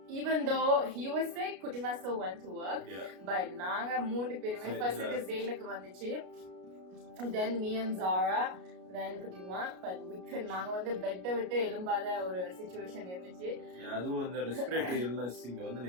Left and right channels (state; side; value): late; left; 33 ms